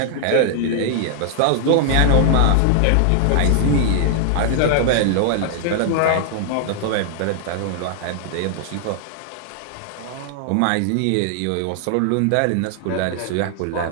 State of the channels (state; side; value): different; both; correlation 0.00